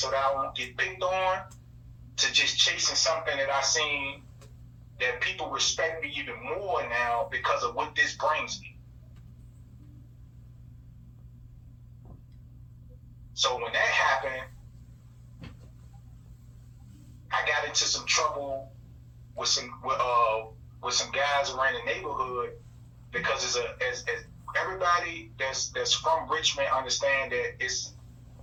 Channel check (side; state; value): both; identical; correlation 1.00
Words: that I won't get picked on, to just chasing something that I seen that people respect me even more now because of what this brings me. So when that happened, I got into some trouble with some guys around the neighborhood because as everybody that's from Richmond understand that it's